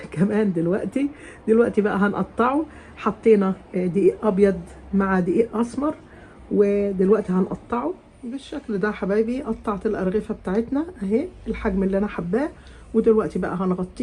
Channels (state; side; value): identical; both; correlation 1.00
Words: كمان دلوقتي بقى هنقطعه. حطينا دقيق ابيض مع دقيق اسمر، ودلوقتي هنقطعه بالشكل ده حبايبي. قطعت الارغفة بتاعتنا اهي الحجم اللي انا حباه، ودلوقتي بقى